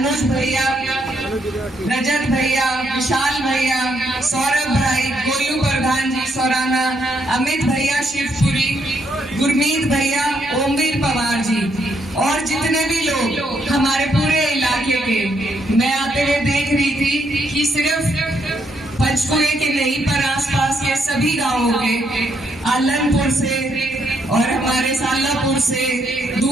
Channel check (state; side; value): normal; both; correlation 0.75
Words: भैया, रजत भैया, विशाल भैया, सौरभ भाई, गोलू प्रधान जी सौराना, अमित भैया शिवपुरी, गुरमीत भैया, ओमवीर पवार जी और जितने भी लोग हमारे पूरे इलाके के। मैं आते हुए देख रही थी कि सिर्फ पंचकुले के नहीं पर आसपास के सभी गांवों के, आलनपुर से और हमारे सालापुर से,